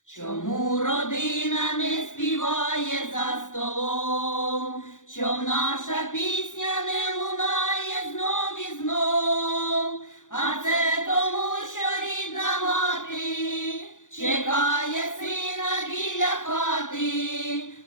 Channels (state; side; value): late; right; 0.87 ms